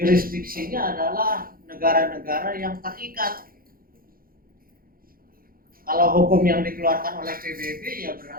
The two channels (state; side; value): late; left; 0.42 ms